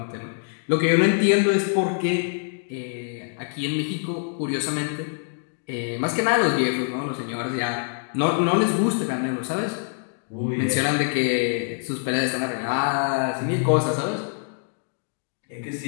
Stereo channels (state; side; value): silent; right; digital silence